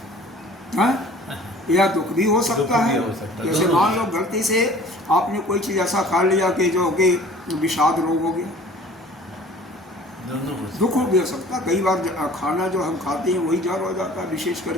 हाँ? या दुख भी हो सकता है। जैसे मान लो गलती से आपने कोई चीज़ ऐसा खा लिया कि जो कि विषाद रोग हो गया, दुख भी हो सकता है। कई बार खाना जो हम खाते हैं वही जहर हो जाता है, विशेष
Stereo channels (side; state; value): both; normal; correlation 0.48